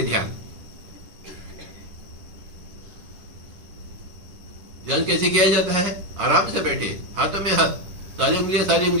ध्यान। ध्यान कैसे किया जाता है? आराम से बैठे, हाथों में हाथ, सारी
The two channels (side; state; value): left; late; 10 ms